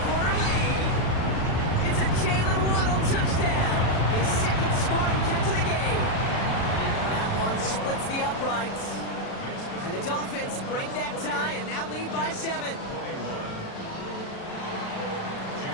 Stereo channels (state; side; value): late; right; 36 ms